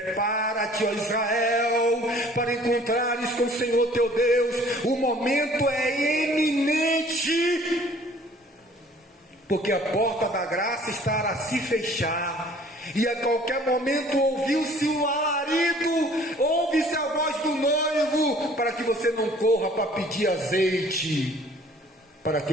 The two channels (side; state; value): both; normal; correlation 0.53